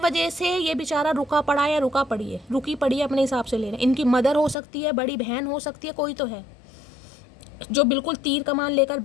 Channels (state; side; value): drops out; right; at 4.5 s